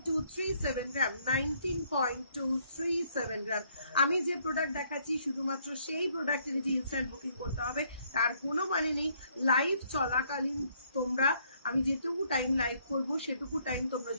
গ্রাম 19.237 গ্রাম আমি যে প্রোডাক্ট দেখাচ্ছি শুধুমাত্র সেই প্রোডাক্টের যে ইনস্ট্যান্ট বুকিং করতে হবে তার কোনো মানে নেই লাইভ চলাকালীন তোমরা আমি যেটুকু টাইম লাইভ করবো সেটুকু টাইম তোমরা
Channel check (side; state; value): both; inverted; correlation -0.68